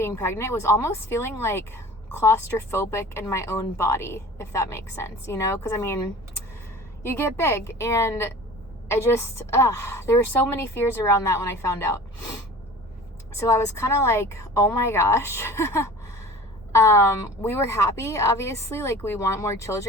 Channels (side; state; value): both; normal; correlation 0.40